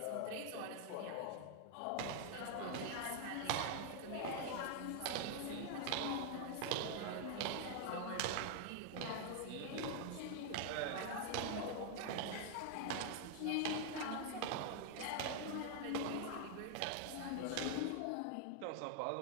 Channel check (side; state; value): both; different; correlation 0.00